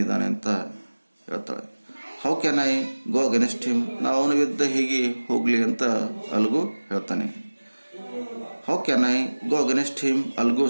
ಅಂತ ಹೇಳ್ತಾಳೆ. How can I go against him? ನಾವು ಅವನ ವಿರುದ್ಧ ಹೇಗೆ ಹೋಗಲಿ ಅಂತ ಅಲ್ಗು ಹೇಳ್ತಾನೆ. How can I go against him? Algo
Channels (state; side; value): inverted; both; correlation -1.00